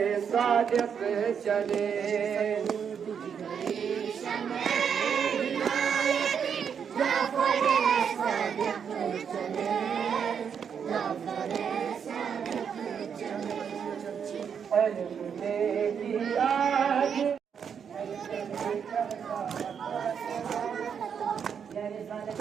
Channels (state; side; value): quieter; left; 7.3 dB